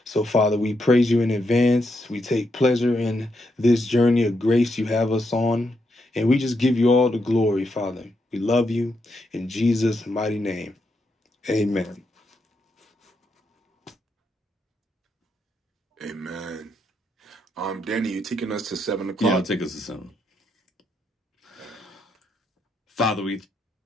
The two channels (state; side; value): normal; both; correlation 0.81